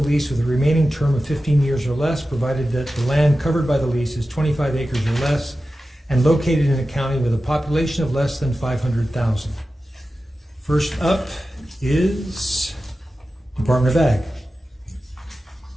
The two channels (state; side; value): normal; both; correlation 0.94